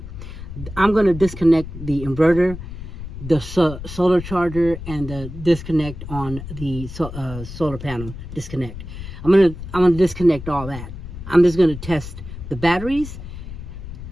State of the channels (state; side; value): noise; left; rumble, 10 dB below the sound